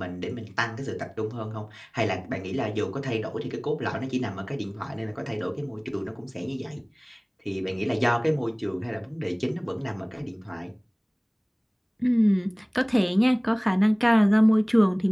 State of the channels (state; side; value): identical; both; correlation 1.00